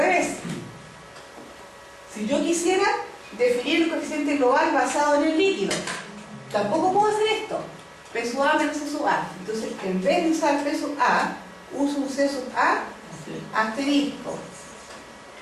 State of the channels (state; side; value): identical; both; correlation 1.00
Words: si yo quisiera definir el coeficiente global basado en el líquido, tampoco puedo hacer esto. P sub A menos C sub A. Entonces, en vez de usar P sub A, uso un C sub A asterisco,